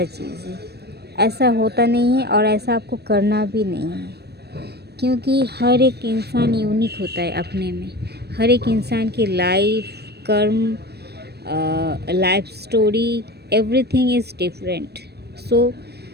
चीज़ है। ऐसा होता नहीं है और ऐसा आपको करना भी नहीं है, क्योंकि हर एक इंसान यूनिक होता है अपने में। हर एक इंसान की लाइफ, कर्म, life story, everything is different. So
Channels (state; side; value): late; left; 0.47 ms